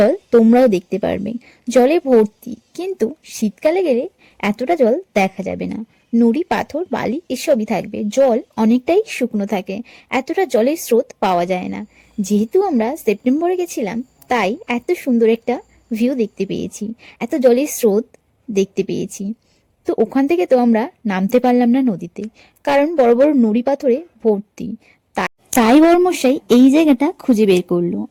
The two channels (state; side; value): identical; both; correlation 1.00